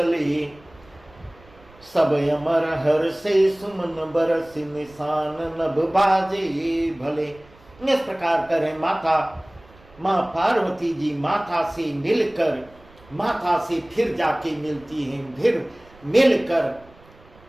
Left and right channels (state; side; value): noise; right; rumble, 26 dB below the sound